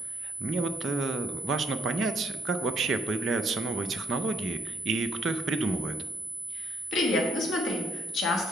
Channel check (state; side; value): normal; both; correlation 0.68